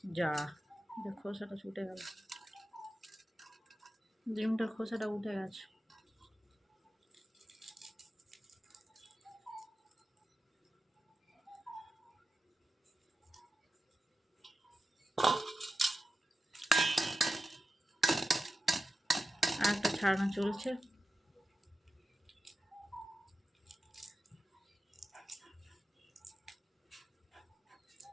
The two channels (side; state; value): both; normal; correlation 0.90